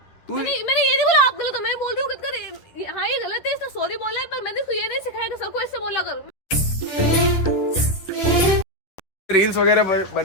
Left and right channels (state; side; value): late; right; 10 ms